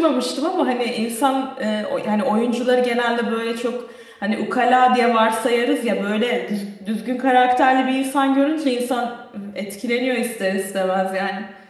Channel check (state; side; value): identical; both; correlation 1.00